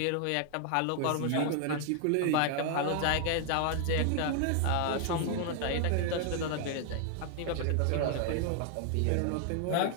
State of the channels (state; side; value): different; both; correlation 0.00